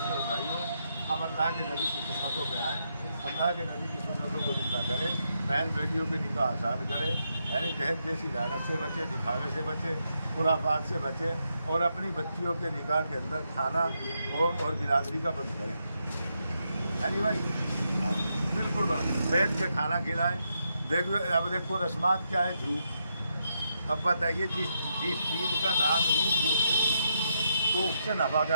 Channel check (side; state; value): both; inverted; correlation -0.81